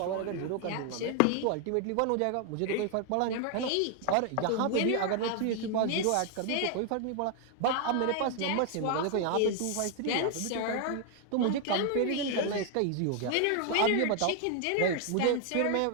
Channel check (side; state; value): both; different; correlation 0.00